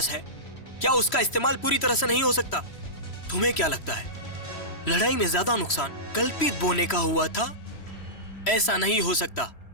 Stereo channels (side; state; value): right; late; 3.1 ms